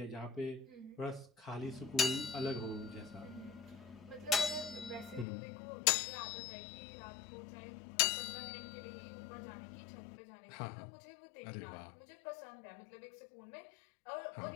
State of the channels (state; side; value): drops out; right; at 5.2 s